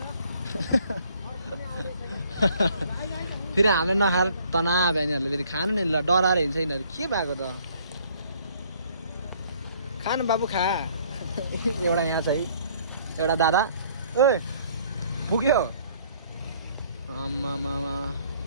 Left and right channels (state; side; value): inverted; both; correlation -0.60